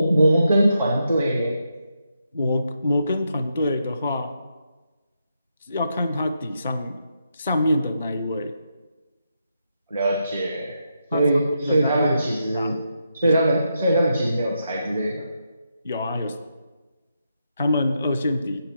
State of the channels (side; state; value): both; inverted; correlation -0.82